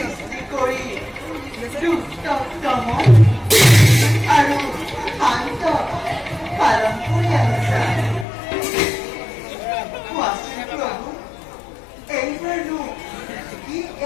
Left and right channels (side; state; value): right; drops out; at 8.2 s